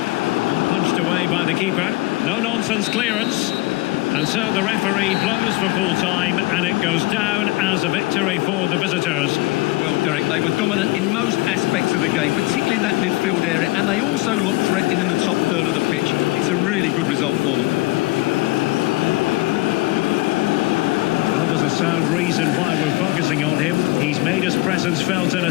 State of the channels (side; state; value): right; quieter; 21.2 dB